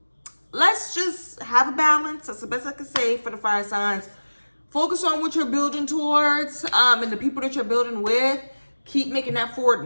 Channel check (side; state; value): both; inverted; correlation -1.00